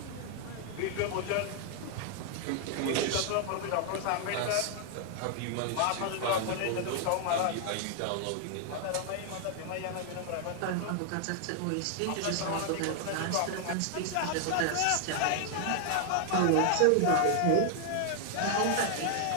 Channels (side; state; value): both; different; correlation 0.00